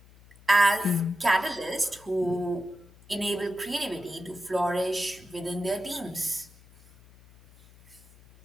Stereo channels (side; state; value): left; noise; hum, 24 dB below the sound